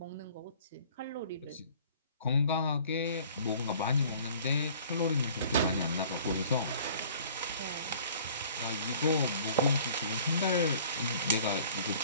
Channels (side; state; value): both; inverted; correlation -0.51